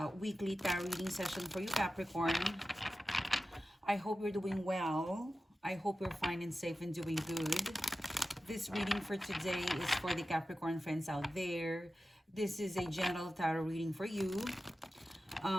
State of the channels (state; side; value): normal; both; correlation 0.94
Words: weekly tarot reading session for you Capricorn. I hope you're doing well. I hope you're fine and safe and doing good. This reading for today is for the Capricorn friends out there. This is a general tarot reading for you.